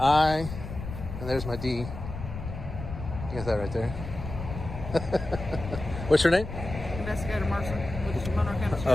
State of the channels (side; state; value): left; noise; rumble, 9 dB below the sound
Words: and there's my D. You got that right there. What's your name? Investigator Mercer with the Monroe County